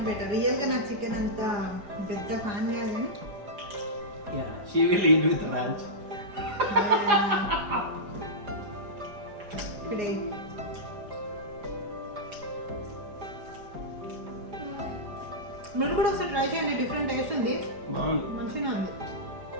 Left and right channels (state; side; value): late; left; 4.9 ms